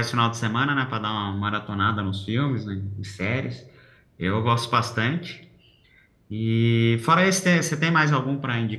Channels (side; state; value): both; identical; correlation 1.00